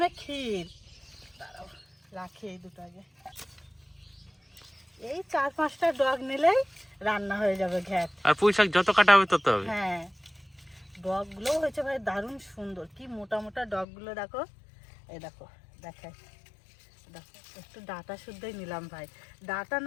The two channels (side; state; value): right; drops out; at 13.9 s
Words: ক্ষীর। দাঁড়াও রাখি এই দুটো আগে। এই 4-5টা ডগ নিলেই রান্না হয়ে যাবে ঘ্যাট। আর পুঁই শাক যত কাটা হবে তত হবে। হ্যাঁ, ডগগুলোও হয়েছে ভাই দারুণ সুন্দর, কি মোটা মোটা ডগগুলো দেখো। এই দেখো, দেখাই, দেখো একটু ডাটা শুদ্ধই নিলাম ভাই, ডাটা